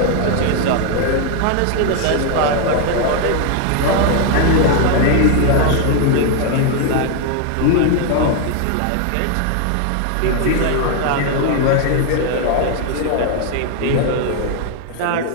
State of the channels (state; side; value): different; both; correlation 0.00